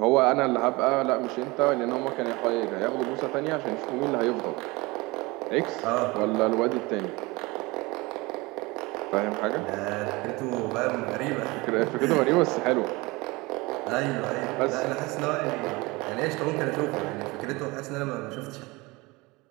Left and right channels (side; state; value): left; quieter; 23.5 dB